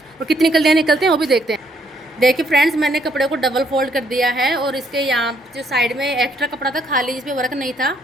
और कितनी कलियाँ निकलते हैं वो भी देखते हैं। देखिए फ्रेंड्स, मैंने कपड़े को डबल फोल्ड कर दिया है और इसके यहाँ जो साइड में एक्स्ट्रा कपड़ा था खाली जिस पे वर्क नहीं था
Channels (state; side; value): normal; both; correlation 0.69